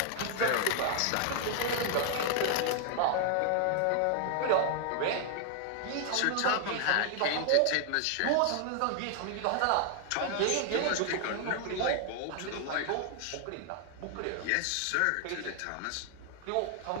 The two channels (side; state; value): both; different; correlation 0.00